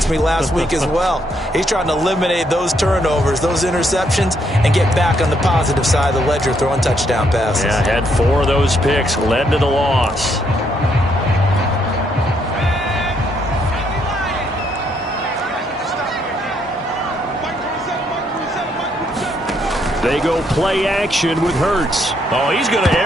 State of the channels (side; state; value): both; normal; correlation 0.73